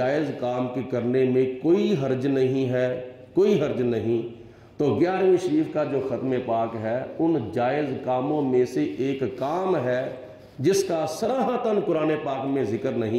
کام کے کرنے میں کوئی حرج نہیں ہے، کوئی حرج نہیں۔ تو 11ویں شریف کا جو ختم پاک ہے ان جائز کاموں میں سے ایک کام ہے جس کا صراحتاً قرآن پاک میں ذکر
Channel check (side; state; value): both; identical; correlation 1.00